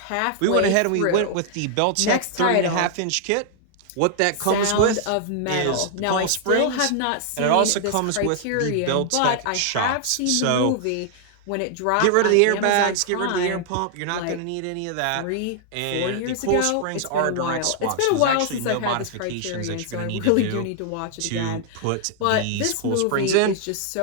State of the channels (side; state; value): both; different; correlation 0.00